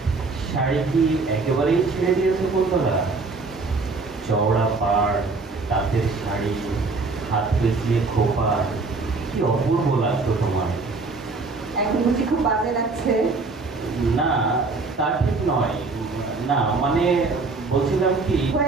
শাড়ি কি একেবারেই ছেড়ে দিয়েছে কুন্তলা? চওড়া পাড়, তাঁতের শাড়ি, হাত পেঁচিয়ে খোপা, কি অপূর্ব লাগতো তোমার। এখন বুঝি খুব বাজে লাগছে? না, তা ঠিক নয়। না মানে বলছিলাম কি,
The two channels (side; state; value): left; quieter; 3.9 dB